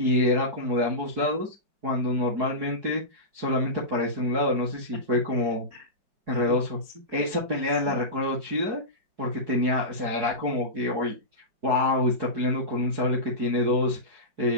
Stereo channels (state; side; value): late; left; 4.7 ms